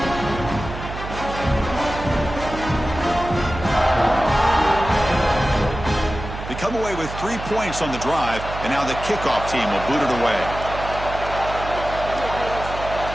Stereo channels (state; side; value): noise; right; hum, 9 dB below the sound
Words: Come away with 3 points on the drive, and now the kickoff team will boot it away.